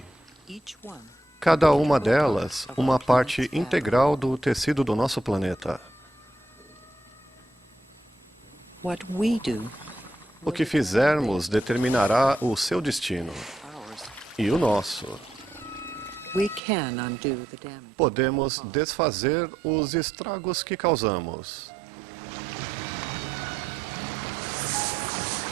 Cada uma delas, uma parte integral do tecido do nosso planeta. O que fizermos determinará o seu destino e o nosso. Podemos desfazer os estragos que causamos.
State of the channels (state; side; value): drops out; left; at 16.6 s